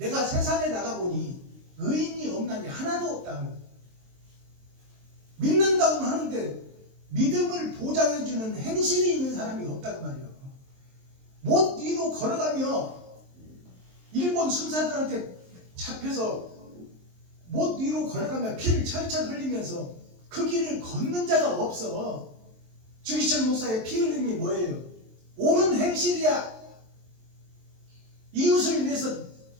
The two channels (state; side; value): late; left; 23 ms